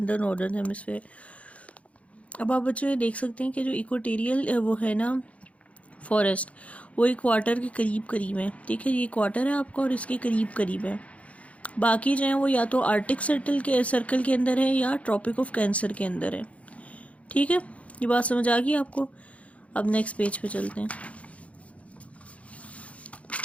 in the northern hemisphere. अब आप बच्चों ये देख सकते हैं कि जो equatorial वो है ना फॉरेस्ट, वो इक्वाटर के करीब करीब है, ठीक है। ये इक्वाटर है आपका और इसके करीब करीब है। बाकी जो है वो या तो आर्टिक सर्कल के अंदर है या ट्रॉपिक ऑफ कैंसर के अंदर है, ठीक है। ये बात समझ आ गई आपको? अब नेक्स्ट पेज पे चलते हैं।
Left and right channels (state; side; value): late; right; 0.065 ms